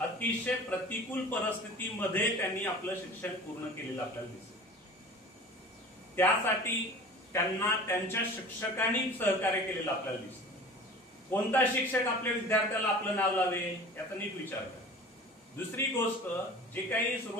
प्रतिकूल परिस्थितीमध्ये त्यांनी आपलं शिक्षण पूर्ण केलेलं आपल्याला दिसतं. त्यासाठी त्यांना त्यांच्या शिक्षकांनी सहकार्य केलेलं आपल्याला दिसतं. कोणता शिक्षक आपल्या विद्यार्थ्याला आपलं नाव लावे याचा नीट विचार करा. दुसरी गोष्ट, जे काही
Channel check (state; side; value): normal; both; correlation 0.40